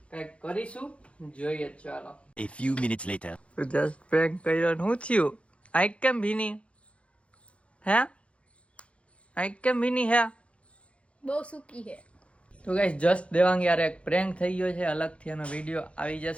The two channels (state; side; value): late; right; 0.061 ms